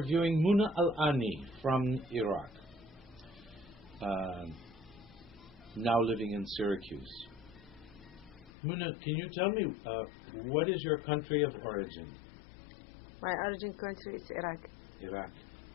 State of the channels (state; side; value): drops out; right; at 8.5 s